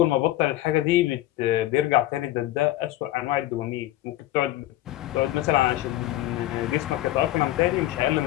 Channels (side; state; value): right; quieter; 15.1 dB